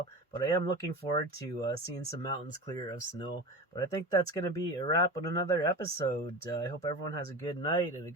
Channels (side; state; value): both; normal; correlation 0.29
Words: But I am looking forward to seeing some mountains clear of snow. But I think that's going to be a wrap on another episode. I hope everyone has a good night and a